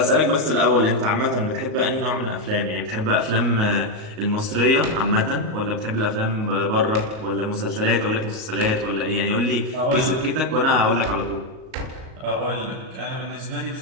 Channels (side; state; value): left; late; 38 ms